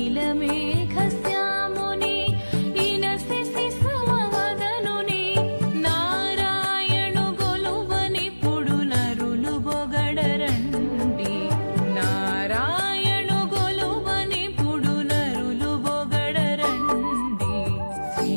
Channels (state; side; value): inverted; both; correlation -1.00